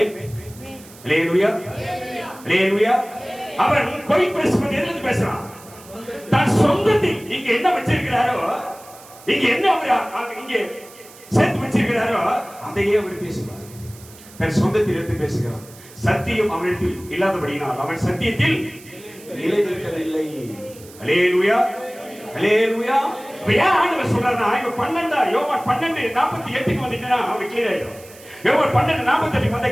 அல்லேலூயா அல்லேலூயா. அவன் பொய் பேசுவது எதிலிருந்து பேசுறான்? தன் சொந்தத்தில் இங்க என்ன வச்சிருக்கிறாரோ, இங்க என்ன அவர் இங்க சேர்த்து வச்சிருக்கிறாரோ அதையே அவர் பேசுகிறார். தன் சொந்தத்தில் எடுத்து பேசுகிறான். சத்தியம் அவனிடத்தில் இல்லாதபடியினால் அவன் சத்தியத்தில் நிலை நிற்கவில்லை. அல்லேலூயா அல்லேலூயா. ஏன் ஆண்டவர் சொல்றாருன்னா, இவன் 12 யோவான் 12:48 வந்துட்டா அவன் கிளியர் ஆயிடும். யோவான் 12:48 வந்தா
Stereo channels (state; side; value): noise; right; hiss, 21 dB below the sound